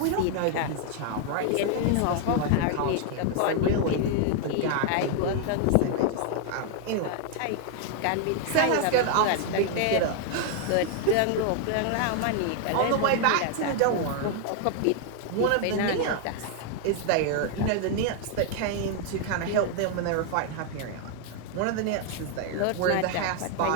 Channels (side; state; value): both; different; correlation 0.00